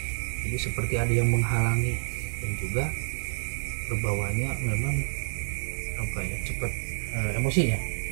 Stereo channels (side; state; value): left; silent; digital silence